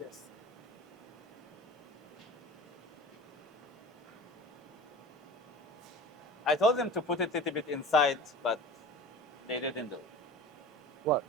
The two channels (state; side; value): normal; both; correlation 0.37